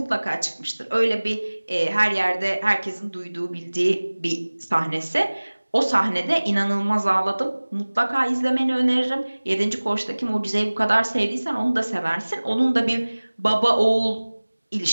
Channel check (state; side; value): inverted; both; correlation -1.00